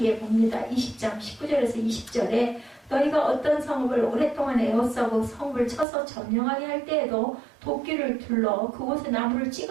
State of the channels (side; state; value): left; drops out; at 5.9 s